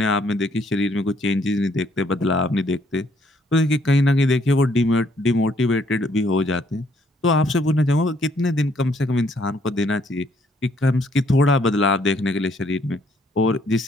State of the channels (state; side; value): normal; both; correlation 0.68